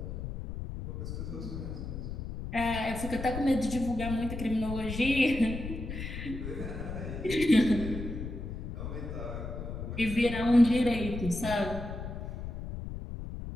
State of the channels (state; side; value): noise; left; rumble, 7 dB below the sound